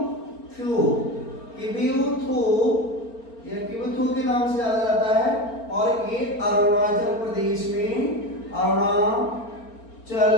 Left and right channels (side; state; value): right; late; 4.4 ms